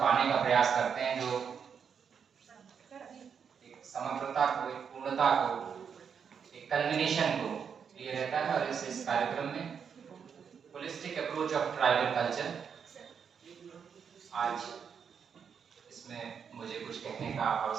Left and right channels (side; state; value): left; quieter; 6.9 dB